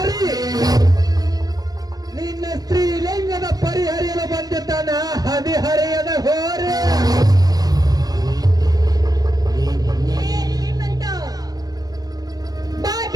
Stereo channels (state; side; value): late; left; 0.19 ms